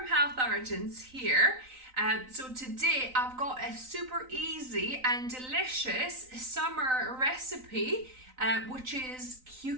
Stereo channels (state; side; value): late; left; 3.9 ms